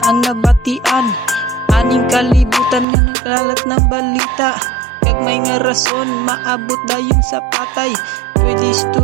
ang nabatian, aning kalibutan nga nagkalat ng balita. Kag may nga rason, maabot dayon sa patay. Pwede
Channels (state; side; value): drops out; left; at 2.9 s